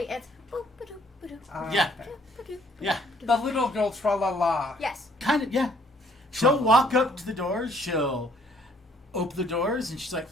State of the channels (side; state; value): both; normal; correlation 0.63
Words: something. it's boop, ba-doop, ba-doop, Yeah. Okay. ba-doop, Yeah. The little girl tra la la. Yes. Kind of, yeah. She'll walk up to the doors, she'll open the doors, and she's like,